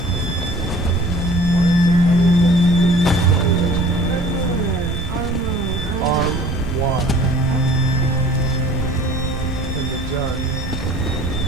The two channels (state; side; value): normal; both; correlation 0.48